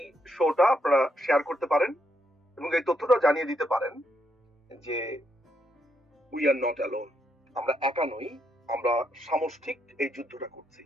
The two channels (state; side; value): normal; both; correlation 0.78